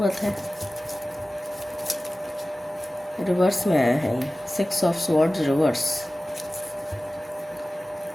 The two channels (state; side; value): normal; both; correlation 0.97